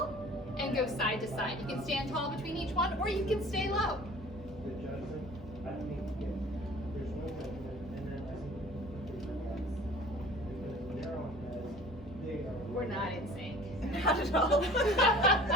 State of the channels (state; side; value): normal; both; correlation 0.46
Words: and go side to side. You can stand tall between each one, or you can stay low. We're not in sync. Not at all.